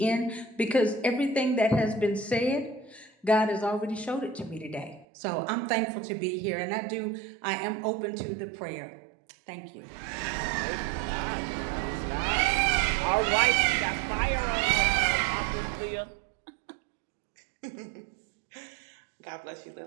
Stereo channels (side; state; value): left; drops out; at 5.1 s